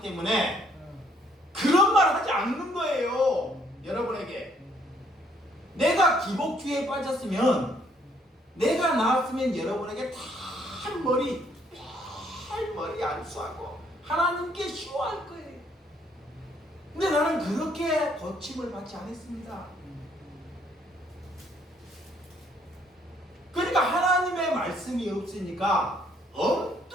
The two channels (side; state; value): both; normal; correlation 0.66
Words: 때문에 그런 말 하지 않는 거예요. 여러분에게 내가 기복주의에 빠졌으면, 내가 나았으면 여러분에게 탈머리 안수하고 하나님께 쉬워할 거예요. 근데 나는 그렇게 고침을 받지 않았습니다. 그러니까 하나님의 말씀이 없으니까